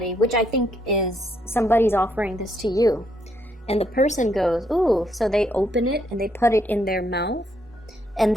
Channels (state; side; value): normal; both; correlation 0.74